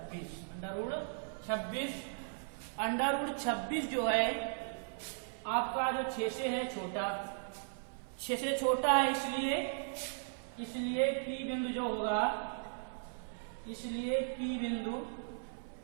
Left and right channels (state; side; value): silent; left; 53 dB below the other